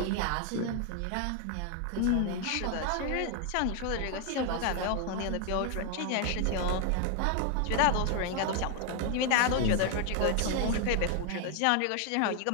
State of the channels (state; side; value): different; both; correlation 0.01